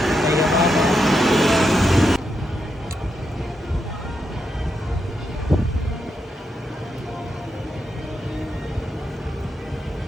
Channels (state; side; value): normal; both; correlation 0.83